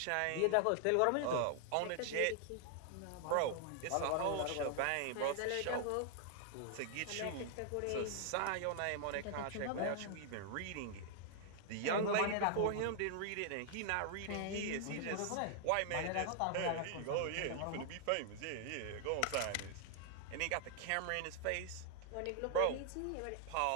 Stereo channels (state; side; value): different; both; correlation 0.00